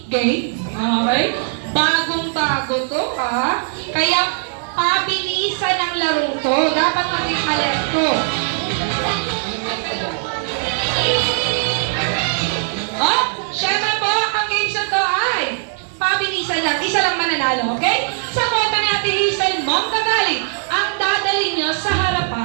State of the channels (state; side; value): silent; left; digital silence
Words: Game. Okay? Bagong-bago to, ha? Kaya, pabilisan ang larong to. Dapat maging alert to. Oh, syempre po, ang games na to ay pabilisan lang. Isa lang mananalo, okay? Sa kota ni Ate Hazel Montagaling, ang dadalhin nyo sa